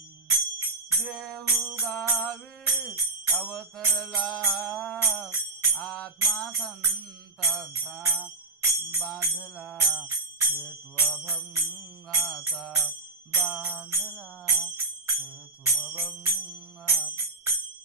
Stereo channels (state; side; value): quieter; left; 3.5 dB